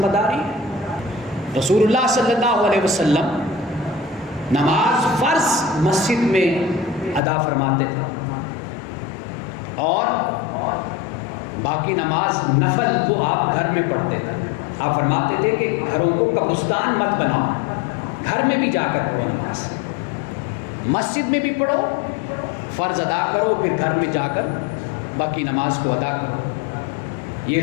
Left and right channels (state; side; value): drops out; right; at 7.2 s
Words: داری ہے۔ رسول اللہ صلی اللہ علیہ وسلم نماز فرض مسجد میں ادا فرماتے تھے، اور باقی نماز نفل وہ آپ گھر میں پڑھتے تھے. آپ فرماتے تھے کہ گھروں کو قبرستان مت بناؤ، گھر میں بھی جا کر پڑھو نماز، مسجد میں بھی پڑھو، فرض ادا کرو، پھر گھر میں جا کر باقی نماز کو ادا کرو. یہ